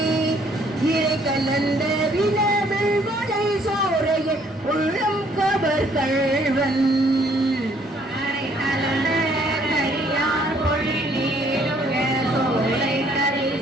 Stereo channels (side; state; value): both; normal; correlation 0.63